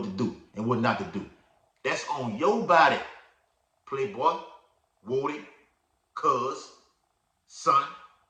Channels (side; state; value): both; identical; correlation 1.00